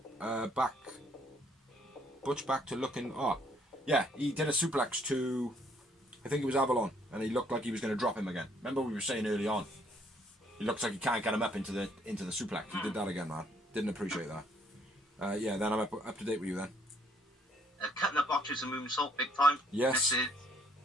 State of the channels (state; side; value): normal; both; correlation 0.66